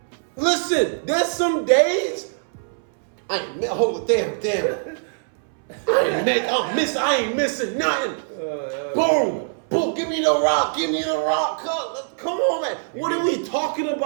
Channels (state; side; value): silent; left; 62 dB below the other